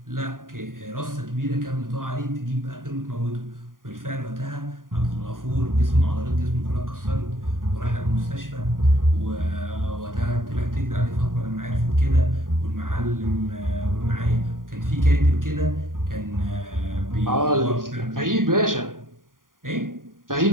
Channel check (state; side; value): late; left; 0.90 ms